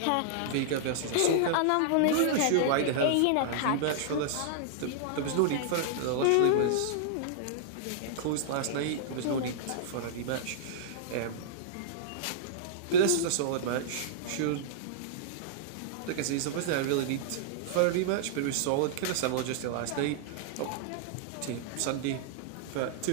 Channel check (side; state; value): both; different; correlation -0.02